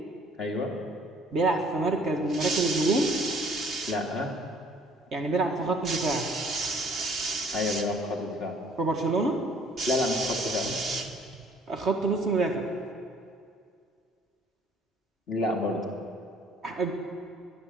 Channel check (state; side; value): normal; both; correlation 0.57